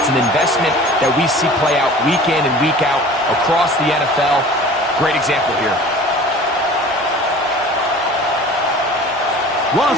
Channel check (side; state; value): both; normal; correlation 0.43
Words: an investment that we see play out week in and week out across the NFL. Great example here.